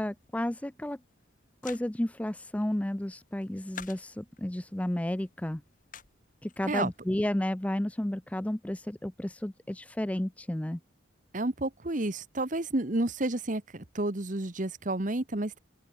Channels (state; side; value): normal; both; correlation 0.75